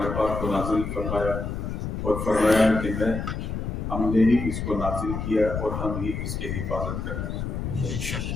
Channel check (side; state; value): left; noise; rumble, 4 dB below the sound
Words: پاک کو نازل فرمایا اور فرمایا کہ ہم نے ہی اس کو نازل کیا اور ہم ہی اس کی حفاظت کریں۔